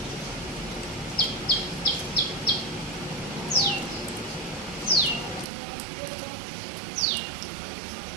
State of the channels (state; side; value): drops out; left; at 5.5 s